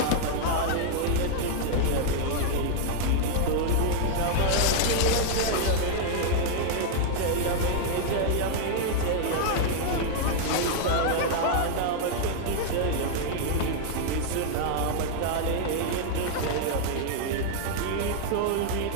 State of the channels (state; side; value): different; both; correlation -0.01